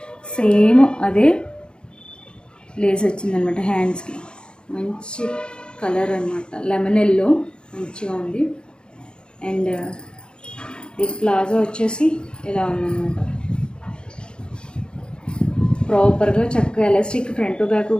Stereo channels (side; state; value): right; late; 0.051 ms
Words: సేమ్ అదే లేస్ వచ్చిందనమాట. హ్యాండ్స్కి మంచి కలర్ అనమాట, లెమన్ ఎల్లో మంచిగా ఉంది. అండ్ ఈ ప్లాజో వచ్చేసి ఇలా ఉందన్నమాట, ప్రాపర్గా చక్కగా ఎలాస్టిక్ ఫ్రంట్ బ్యాక్